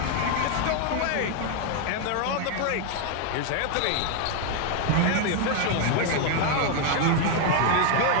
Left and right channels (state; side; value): different; both; correlation 0.00